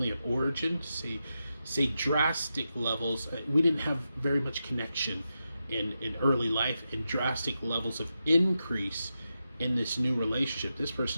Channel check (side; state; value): both; inverted; correlation -0.88